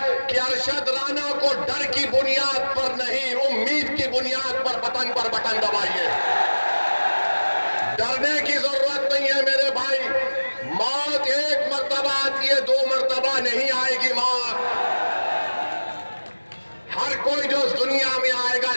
कि अरशद राणा को डर की बुनियाद पर नहीं, उम्मीद की बुनियाद पर बटन दबाइए। डरने की जरूरत नहीं है मेरे भाई। मौत एक मर्तबा आती है, 2 मर्तबा नहीं आएगी मौत। हर कोई जो इस दुनिया में आएगा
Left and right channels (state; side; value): inverted; both; correlation -1.00